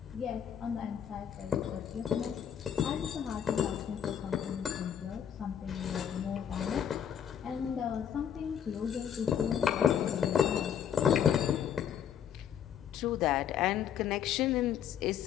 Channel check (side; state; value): right; quieter; 8.8 dB